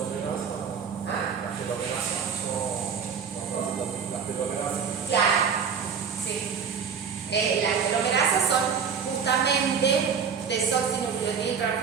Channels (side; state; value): left; quieter; 6.6 dB